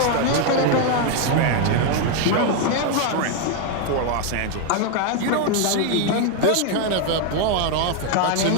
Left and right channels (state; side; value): different; both; correlation 0.01